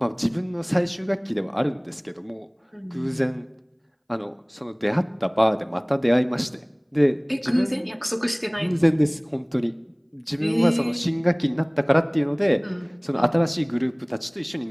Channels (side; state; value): both; identical; correlation 1.00